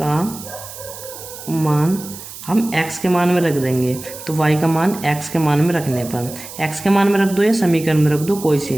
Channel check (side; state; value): right; noise; hiss, 13 dB below the sound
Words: मान हम x के मान में रख देंगे, तो y का मान x के मान में रखने पर x के मान में रख दो या समीकरण में रख दो, कोई सी